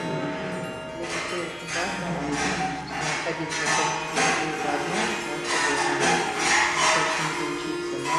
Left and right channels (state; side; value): identical; both; correlation 1.00